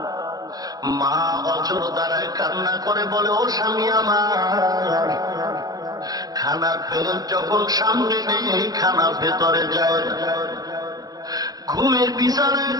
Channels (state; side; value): late; left; 0.18 ms